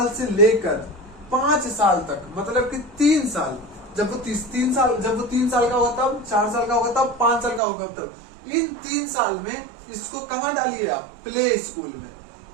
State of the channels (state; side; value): drops out; left; at 7.6 s